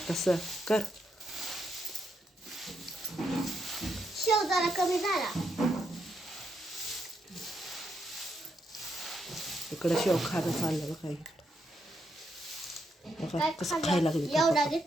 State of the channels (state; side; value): normal; both; correlation 0.80